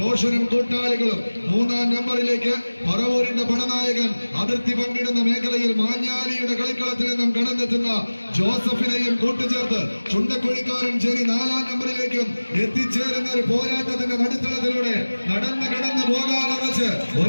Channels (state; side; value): inverted; both; correlation -1.00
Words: കൂട്ടാളികളും 3-ാം നമ്പറിലേക്ക് പറവൂരിന്റെ പടനായകൻ അതിർത്തി പങ്കിടുന്ന മേഖലയിൽ മാഞ്ഞാലിയുടെ കളിക്കളത്തിൽ നിന്നും കടന്നെത്തുന്ന ജോസഫിനെയും കൂട്ടുചേർത്ത് ചുണ്ടക്കുഴിക്കാരൻ ചേരി 4-ാം നമ്പറിലേക്കും എത്തിച്ചേരുന്ന ഒരു പോരാട്ടത്തിന്റെ നടുത്തളത്തിലൂടെ നടന്നു പോകാനുറച്ച്